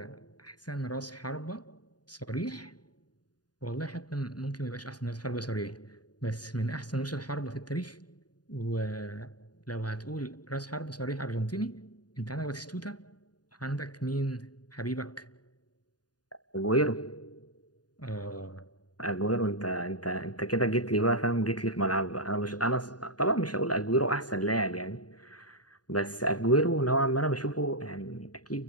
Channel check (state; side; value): late; right; 0.69 ms